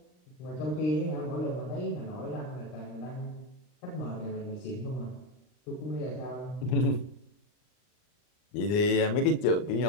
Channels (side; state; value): right; late; 39 ms